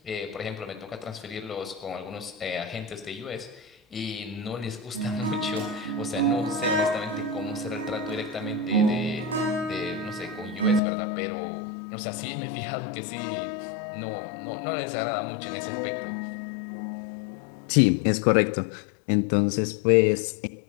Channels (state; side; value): drops out; right; at 10.8 s